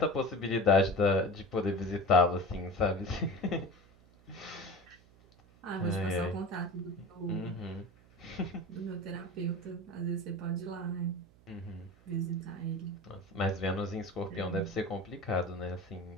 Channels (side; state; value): right; noise; hum, 26 dB below the sound